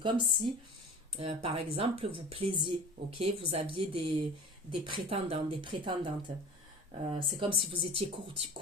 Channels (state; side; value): normal; both; correlation 0.38